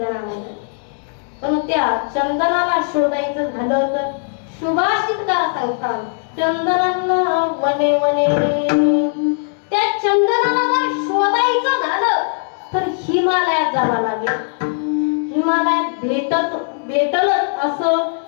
पण त्या चंदनाला शोधायचं झालं तर सुभाषितकार सांगतात चंदनाला वने वने. त्या चंदनाला जर शोधायचं झालं तर हिमालयात जावं लागेल. हिमालयात भेटलच असं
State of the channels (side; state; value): right; silent; digital silence